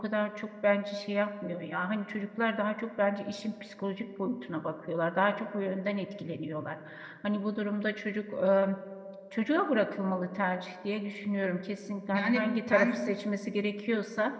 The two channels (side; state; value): both; identical; correlation 1.00